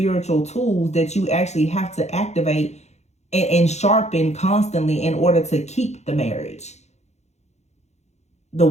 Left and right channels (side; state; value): right; late; 0.32 ms